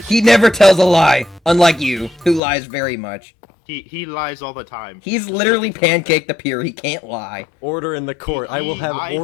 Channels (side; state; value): right; drops out; at 2.4 s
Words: never tells a lie, unlike you, who lies very much. He lies all the time. He's literally Pancake the Pure, he can't lie. Order in the court. I will have I